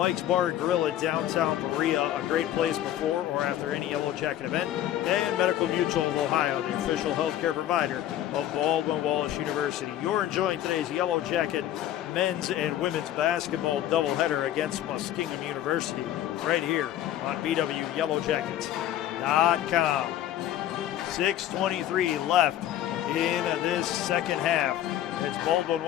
Bar and Grill in downtown Berea, a great place before or after any Yellow Jacket event. And Medical Mutual of Ohio, the official healthcare provider of Baldwin Wallace University. You're enjoying today's Yellow Jacket men's and women's basketball doubleheader against Muskingum University right here on BWYellowJackets.com. 6:23 left in this second half. It's Baldwin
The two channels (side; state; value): right; quieter; 12.2 dB